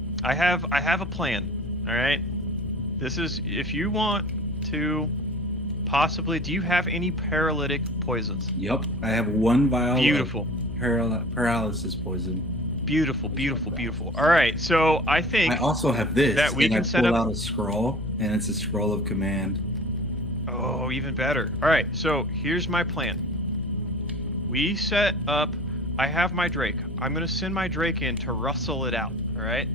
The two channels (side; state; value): left; noise; hum, 8 dB below the sound